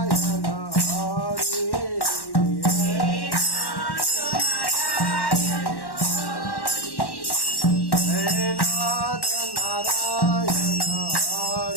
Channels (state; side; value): late; right; 1.1 ms